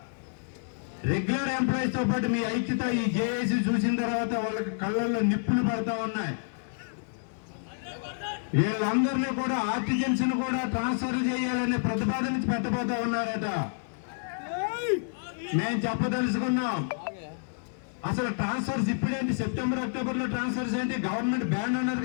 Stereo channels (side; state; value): right; silent; 59 dB below the other